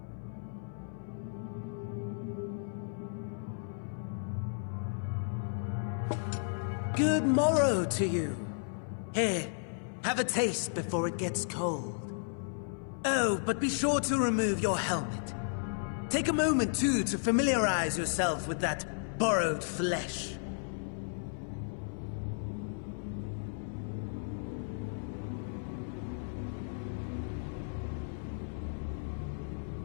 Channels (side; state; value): right; silent; 55 dB below the other